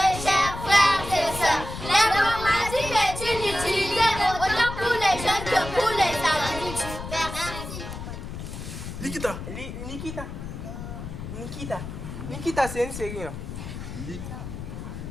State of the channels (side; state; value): left; noise; rumble, 9 dB below the sound